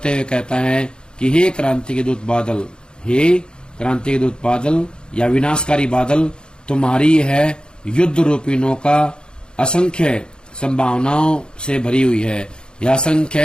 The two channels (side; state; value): right; late; 0.049 ms